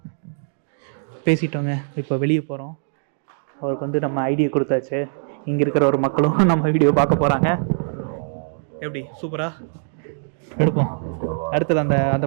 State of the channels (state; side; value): silent; left; digital silence